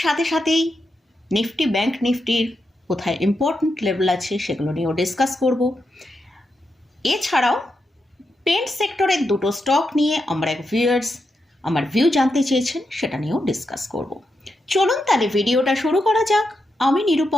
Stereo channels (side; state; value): both; normal; correlation 0.85